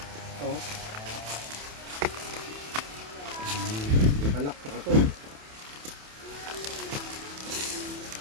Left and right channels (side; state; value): left; late; 28 ms